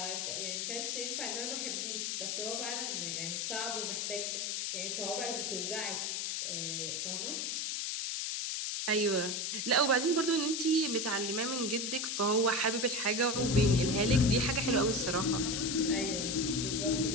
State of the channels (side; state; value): left; noise; hiss, 1 dB below the sound